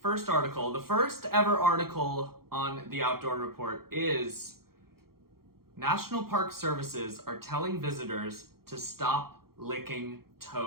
first article, the first ever article on the Outdoor Report, is National Park Services are telling visitors to stop licking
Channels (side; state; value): left; late; 0.94 ms